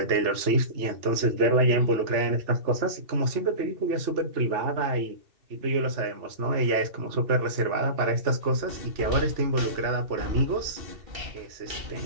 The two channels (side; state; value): left; late; 2.7 ms